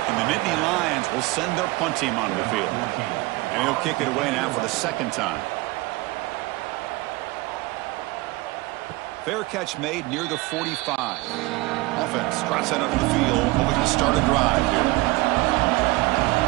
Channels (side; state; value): left; quieter; 21.8 dB